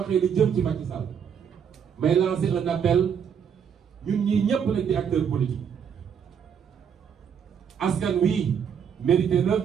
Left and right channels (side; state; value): left; quieter; 7.6 dB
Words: li jëm ci Macky Sall may lancer un appel ñun ñii ñëpp nag di acteurs politiques askan wi mérité na